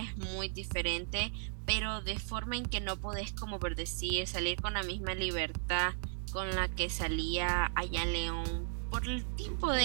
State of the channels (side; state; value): left; silent; 54 dB below the other